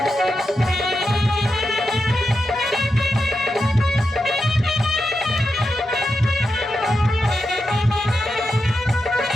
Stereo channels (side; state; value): both; normal; correlation 0.87